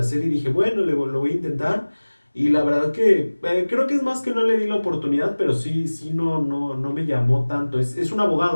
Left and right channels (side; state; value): both; inverted; correlation -1.00